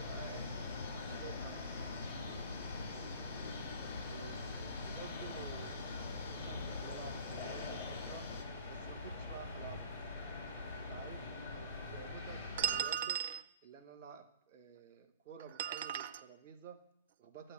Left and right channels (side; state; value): both; inverted; correlation -0.44